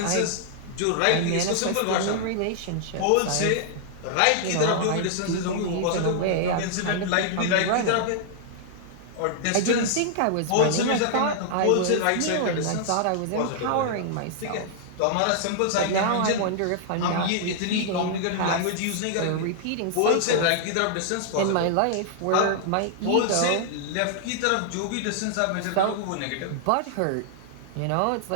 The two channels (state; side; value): different; both; correlation -0.01